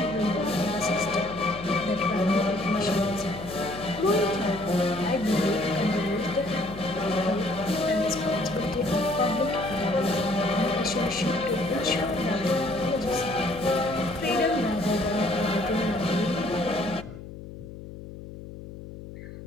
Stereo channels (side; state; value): left; noise; hum, 13 dB below the sound